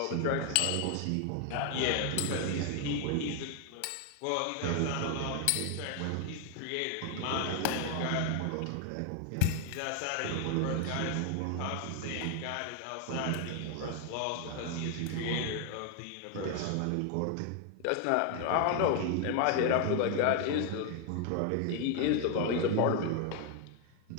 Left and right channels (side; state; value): both; different; correlation 0.00